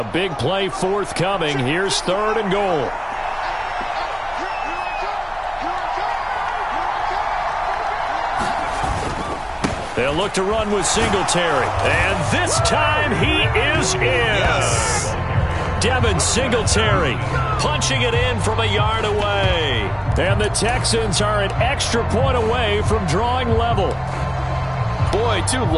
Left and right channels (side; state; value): both; identical; correlation 1.00